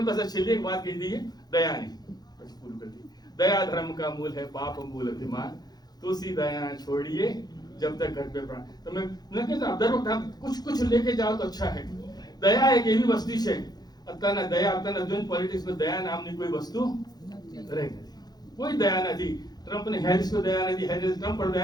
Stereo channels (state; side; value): late; right; 0.19 ms